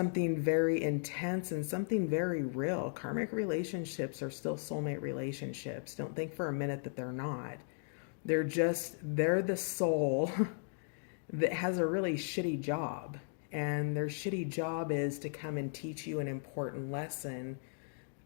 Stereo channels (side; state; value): right; silent; digital silence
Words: very intense and something very real. Karmic relationships are still soulmate relationships. Don't think for a minute that they're not. They're the soul that has a really shitty job. And their shitty job is to come and teach you an important lesson